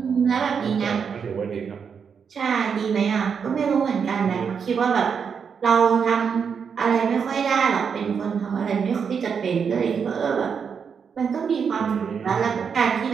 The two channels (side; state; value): left; quieter; 6.5 dB